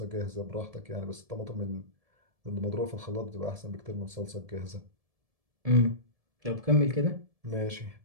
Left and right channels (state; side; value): late; left; 1.7 ms